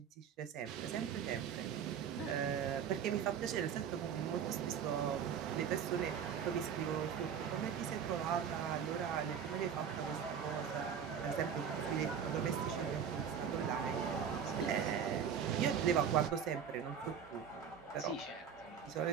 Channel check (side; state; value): left; quieter; 7.8 dB